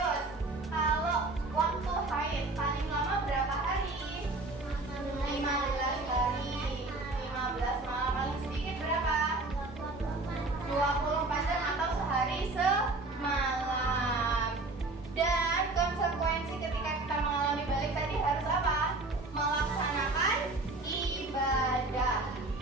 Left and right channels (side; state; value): left; quieter; 3.1 dB